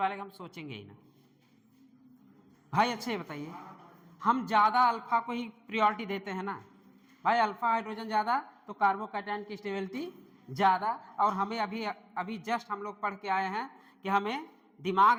का हम सोचेंगे ही ना भाई। अच्छे बताइए, हम ज़्यादा अल्फा को ही प्रायोरिटी देते हैं ना भाई। अल्फा हाइड्रोजन ज़्यादा तो कार्बोकैटायन की स्टेबिलिटी ज़्यादा। और हमें अभी जस्ट हम लोग पढ़ के आए हैं कि हमें दिमाग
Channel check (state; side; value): identical; both; correlation 1.00